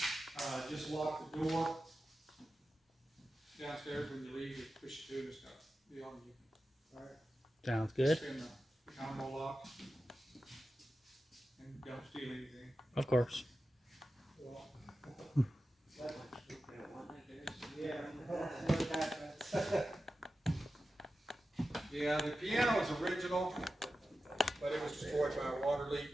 Just lock the door downstairs when you leave. Just push it to and stuff. Be on you. All right. Sounds good. Spin the combo lock and don't steal anything. Of course. Yeah, the piano is original, but it was destroyed by a water leak.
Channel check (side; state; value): both; normal; correlation 0.92